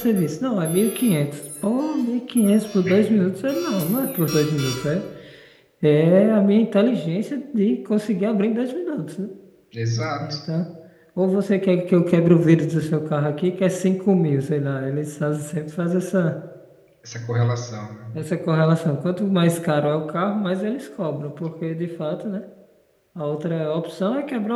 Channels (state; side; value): identical; both; correlation 1.00